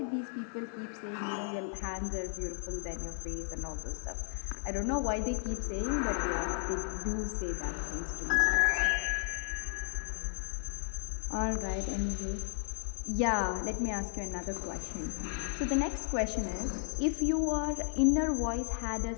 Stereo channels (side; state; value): right; silent; digital silence